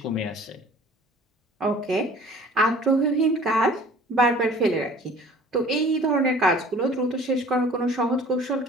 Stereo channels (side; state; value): both; normal; correlation 0.48